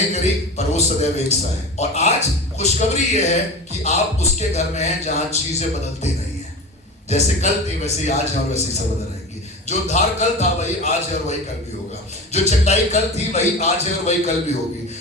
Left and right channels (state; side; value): normal; both; correlation 0.30